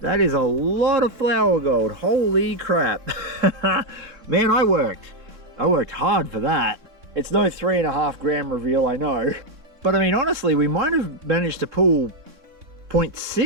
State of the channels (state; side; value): late; left; 3.6 ms